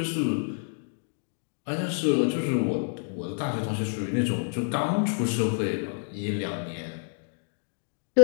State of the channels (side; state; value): right; silent; digital silence